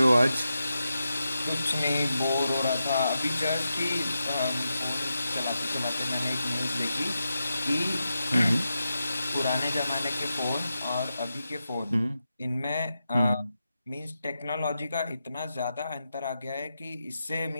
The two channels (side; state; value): both; inverted; correlation -0.89